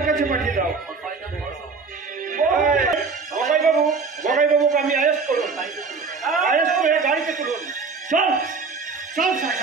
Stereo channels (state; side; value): quieter; left; 4.8 dB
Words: দাও। বগাই বাবুকে আমি অ্যারেস্ট করুন, অ্যারেস্ট করে গাড়িতে তুলুন। চল চল স্যার,